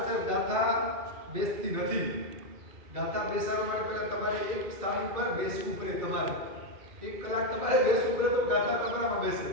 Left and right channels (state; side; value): late; left; 2.1 ms